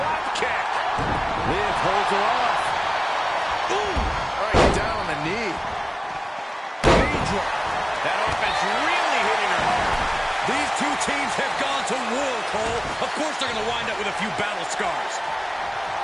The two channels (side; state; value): both; identical; correlation 1.00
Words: That offense really hitting her hard. These two teams have gone to war, Cole. Of course they're going to wind up with a few battle scars.